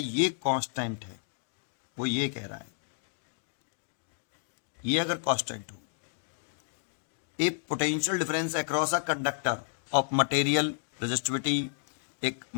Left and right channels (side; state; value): right; silent; digital silence